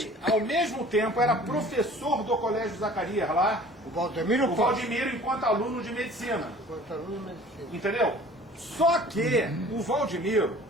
Ele, ao mesmo tempo, era professor do Colégio Zacarias lá, O Valdemiro o Pote. Valdemiro enquanto aluno de medicina. Enquanto aluno de medicina. Entendeu? Só que o Valdemiro,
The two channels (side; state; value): both; normal; correlation 0.47